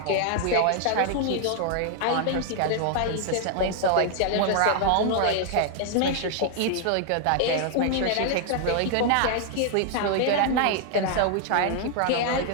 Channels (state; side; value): different; both; correlation 0.00